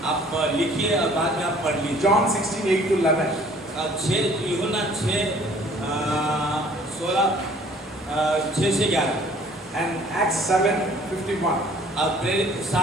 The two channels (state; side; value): normal; both; correlation 0.55